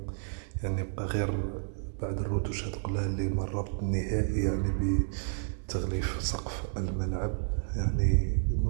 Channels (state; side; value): silent; left; digital silence